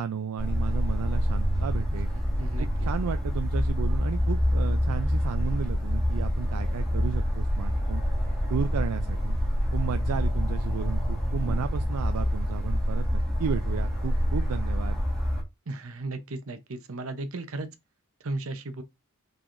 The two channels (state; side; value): normal; both; correlation 0.87